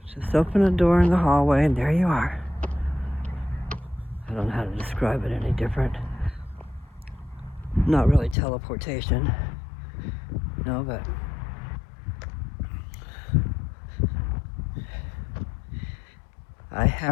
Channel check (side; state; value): right; drops out; at 8.3 s